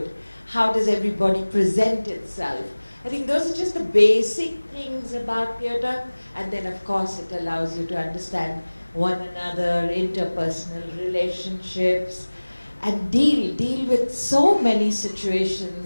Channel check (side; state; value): both; inverted; correlation -1.00